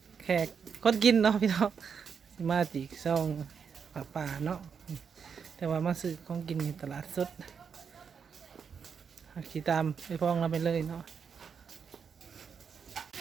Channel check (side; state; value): left; quieter; 6.5 dB